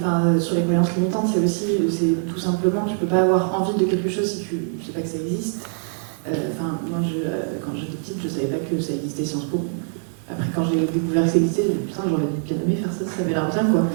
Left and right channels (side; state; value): left; silent; digital silence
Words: sur les croyances limitantes, c'est tout simplement, tu peux pas avoir envie de quelque chose si tu ne sais pas que ça existe. Moi, quand j'étais petite, je savais pas que ça existait Sciences Po. Après, quand j'ai découvert que ça existait, j'ai dit putain, j'aurais bien aimé faire ça, ça avait l'air bien, quoi.